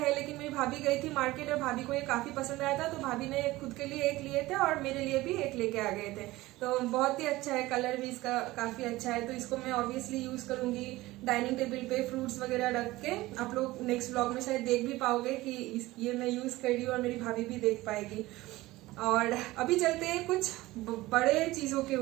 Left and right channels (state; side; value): quieter; left; 18.6 dB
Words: लेकिन मेरी भाभी गई थी मार्केट और भाभी को ये काफी पसंद आया था, तो भाभी ने खुद के लिए एक लिए थे और मेरे लिए भी एक लेके आ गए थे। तो बहुत ही अच्छा है, कलर भी इसका काफी अच्छा है। तो इसको मैं ऑब्वियसली यूज करूंगी डाइनिंग टेबल पे फ्रूट्स वगैरह रख के। आप लोग नेक्स्ट ब्लॉग में शायद देख भी पाओगे कि ये मैं यूज कर रही हूँ और मेरी भाभी भी देख पाएगी। और अभी चलते हैं कुछ बड़े चीजों के